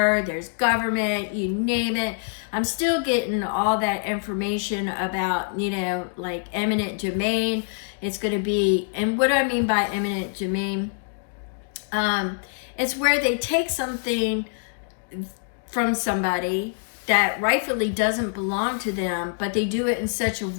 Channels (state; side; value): silent; right; digital silence